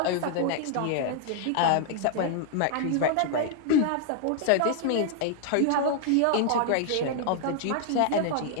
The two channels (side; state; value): both; different; correlation 0.00